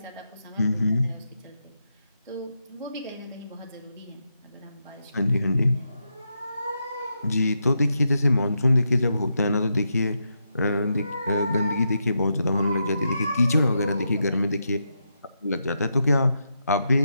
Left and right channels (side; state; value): both; inverted; correlation -0.84